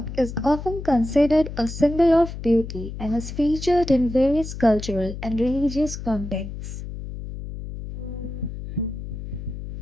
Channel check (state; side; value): noise; left; hum, 9 dB below the sound